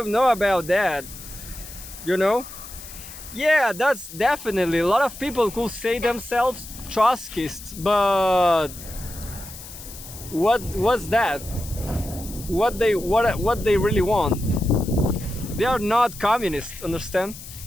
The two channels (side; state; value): left; noise; hiss, 14 dB below the sound